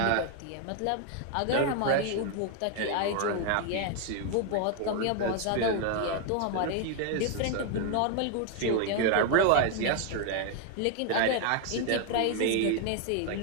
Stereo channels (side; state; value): both; different; correlation 0.01